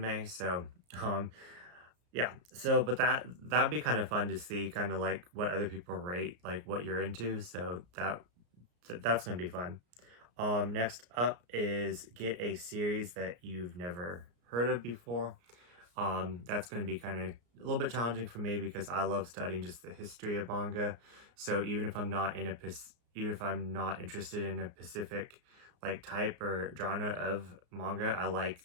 so yeah. So but that'd be kind of fun to see, kind of like what other people rate, like what you're into. So that's gonna be fun. Next up is get a series that you've never heard of before. That's going to be kind of a little bit challenging for me because I love studying just the history of manga. So even if I'm not interested in a specific like type or genre of manga, I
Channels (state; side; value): late; left; 33 ms